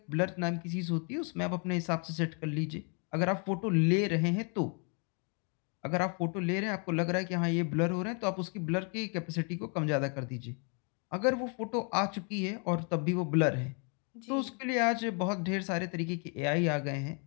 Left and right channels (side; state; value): right; quieter; 38.2 dB